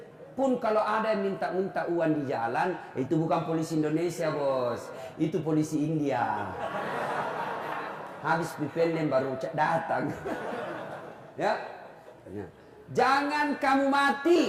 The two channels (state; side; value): identical; both; correlation 1.00